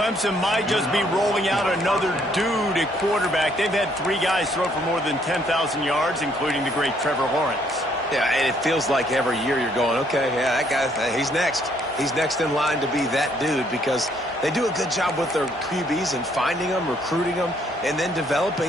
might just be rolling out another dude at quarterback. They've had 3 guys throw for more than 10,000 yards, including the great Trevor Lawrence. Yeah, and it feels like every year you're going, okay, yeah, that guy, he's next. He's next in line to be that dude because they do a good job with their QBs and finding them, recruiting them, and then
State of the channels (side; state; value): both; normal; correlation 0.67